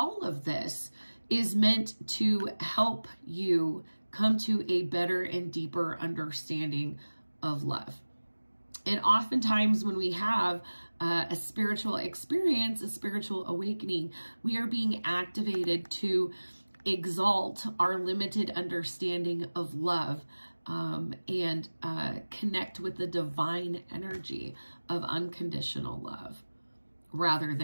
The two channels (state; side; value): inverted; both; correlation -1.00